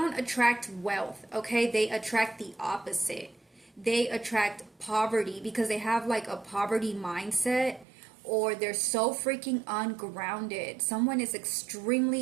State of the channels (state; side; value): drops out; left; at 7.9 s